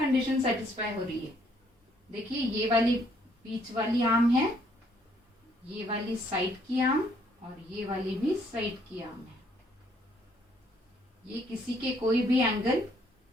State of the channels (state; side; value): normal; both; correlation 0.67